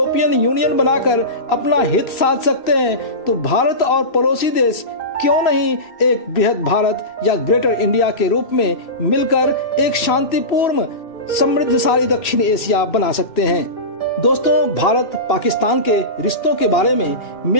यूनियन बनाकर अपना हित साध सकते हैं, तो भारत और पड़ोसी देश क्यों नहीं एक बृहद भारत या ग्रेटर इंडिया के रूप में मिलकर एक शांतिपूर्ण समृद्धशाली दक्षिण एशिया बना सकते हैं। दोस्तों, भारत पाकिस्तान के रिश्तों के बारे में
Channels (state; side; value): late; right; 2.7 ms